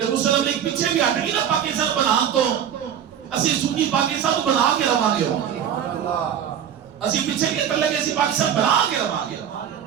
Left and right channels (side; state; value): left; quieter; 9.1 dB